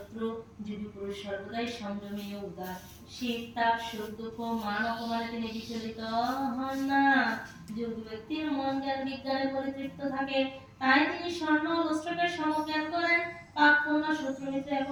যোগী পুরুষ সর্বদাই সংযমী ও উদার। শীত তাপ সুখ দুঃখ মান অপমানে তিনি বিচলিত হন না। যোগী ব্যক্তির মন জ্ঞান বিজ্ঞানে পরিতৃপ্ত থাকে, তাই তিনি স্বর্ণ ও লুস্ত্রকে সমজ্ঞান করেন। পাপ পূর্ণ শত্রু মিত্র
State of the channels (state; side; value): identical; both; correlation 1.00